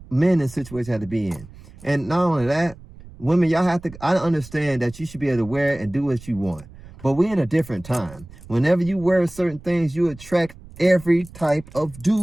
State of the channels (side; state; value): right; noise; rumble, 19 dB below the sound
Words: men in situations they have to be in. And not only that, women, y'all have to, I understand that you should be able to wear it and do what you want. But we're in a different time. Whenever you wear certain things, you attract every type of